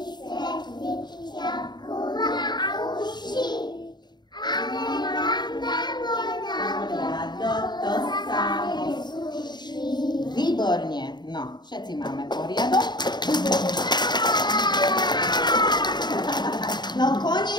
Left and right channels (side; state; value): right; late; 0.21 ms